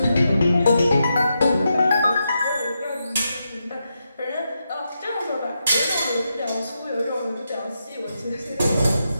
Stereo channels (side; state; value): both; inverted; correlation -0.85